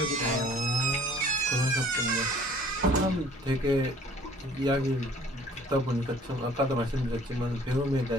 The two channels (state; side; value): normal; both; correlation 0.54